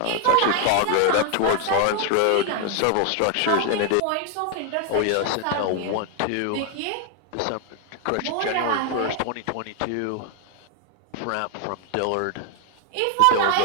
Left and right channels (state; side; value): different; both; correlation 0.00